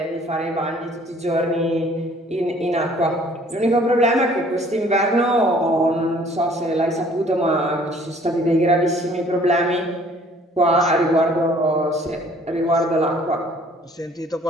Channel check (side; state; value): both; normal; correlation 0.56